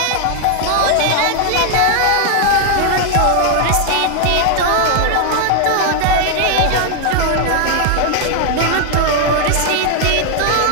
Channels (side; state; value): both; different; correlation 0.00